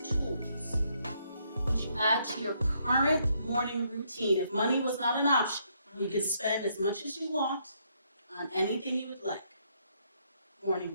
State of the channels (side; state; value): both; inverted; correlation -0.73